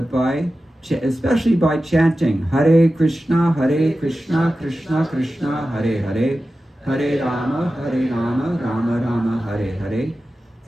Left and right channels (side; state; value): both; normal; correlation 0.94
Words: especially by chanting Hare Krishna, Krishna Krishna, Hare Hare, Hare Rama, Rama Rama, Hare Hare.